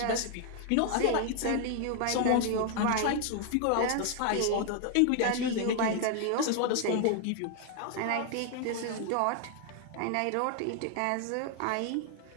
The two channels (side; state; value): both; different; correlation 0.00